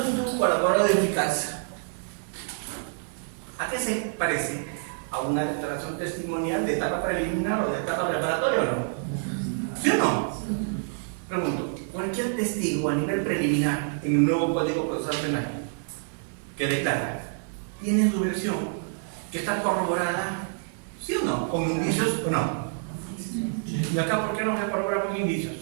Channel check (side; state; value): left; silent; digital silence